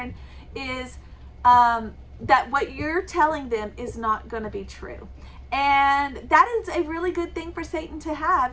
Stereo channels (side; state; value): both; identical; correlation 1.00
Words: is that what you're telling them is not going to be true. And that is a really good thing for Satan to